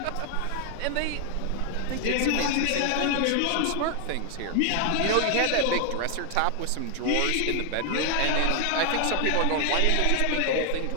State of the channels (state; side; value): different; both; correlation 0.00